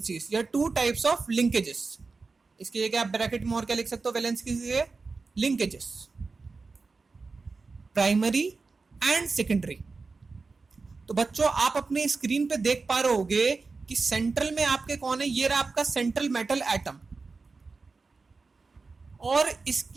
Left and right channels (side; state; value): left; quieter; 4.2 dB